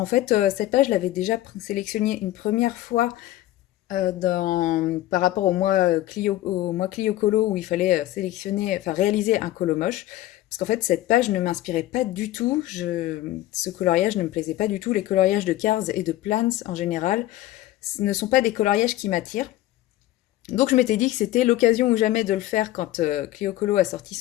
fait, cette page, je l'avais déjà sélectionnée une première fois par rapport au mois Clio Colo où il fallait sélectionner, enfin réaliser un colo moche. Parce qu'en fait, cette page ne m'inspirait pas du tout. Ce coloriage ne me plaisait pas du tout. Les coloriages de Cars et de Plants en général ne sont pas des coloriages qui m'attirent. Donc je m'étais dit que c'était l'occasion ou jamais de le faire quand Clio Colo a sorti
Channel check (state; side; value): quieter; right; 15.2 dB